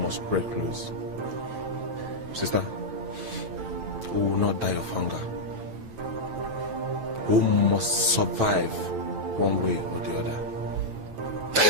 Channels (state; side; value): late; left; 8.9 ms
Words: break loose. Sister, we will not die of hunger. We must survive one way or the other.